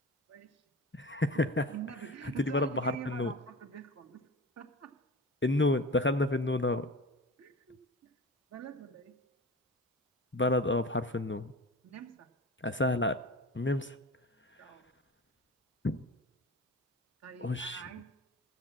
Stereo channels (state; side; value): normal; both; correlation 0.34